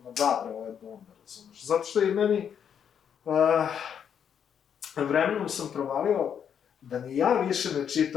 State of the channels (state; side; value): quieter; right; 8.1 dB